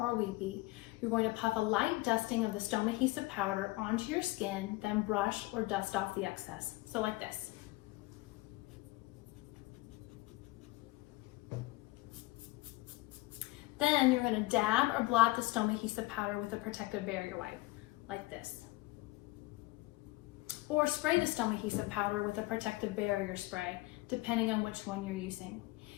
weepy, you're going to puff a light dusting of the Stomahesive powder onto your skin, then brush or dust off the excess. So like this. Then you're going to dab or blot the Stomahesive powder with a protective barrier wipe, like this. Or spray the Stomahesive powder with a protective barrier spray, depending on which one you're using.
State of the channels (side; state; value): right; quieter; 20.7 dB